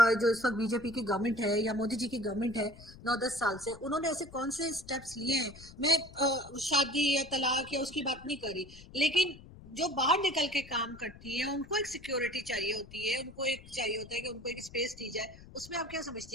जो इस वक्त बीजेपी की गवर्नमेंट है या मोदी जी की गवर्नमेंट है 9-10 साल से, उन्होंने ऐसे कौन से स्टेप्स लिए हैं? मैं शादी या तलाक या उसकी बात नहीं करी, लेकिन जो बाहर निकल के काम करती है उनको एक सिक्योरिटी चाहिए होती है, उनको एक चाहिए होता है कि उनको एक स्पेस दी जाए। उसमें आप क्या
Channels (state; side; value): noise; left; rumble, 19 dB below the sound